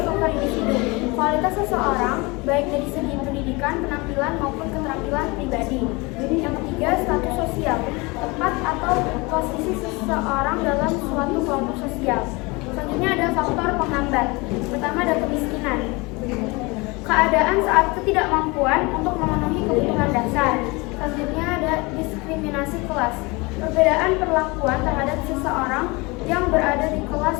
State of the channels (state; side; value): quieter; right; 25.6 dB